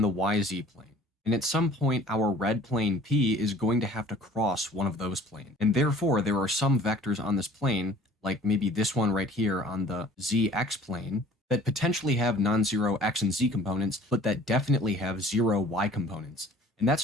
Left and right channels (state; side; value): normal; both; correlation 0.50